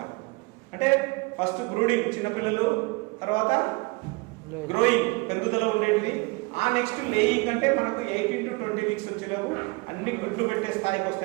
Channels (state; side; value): quieter; left; 26.3 dB